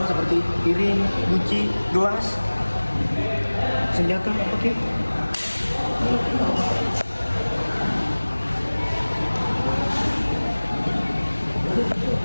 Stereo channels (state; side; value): inverted; both; correlation -1.00